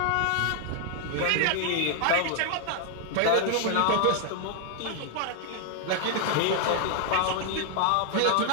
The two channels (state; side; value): different; both; correlation 0.00